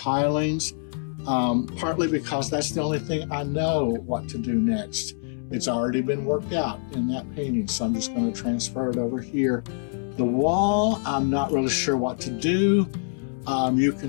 partly because that's the only thing I know what to do next. It's already been worked out in that painting, so I'm just going to transfer it over here. The wall, I'm not really sure what to do. You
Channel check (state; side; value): silent; right; 62 dB below the other